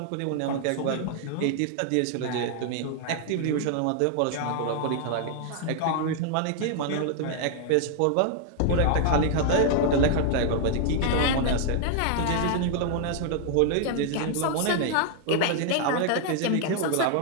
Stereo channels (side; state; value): both; different; correlation 0.00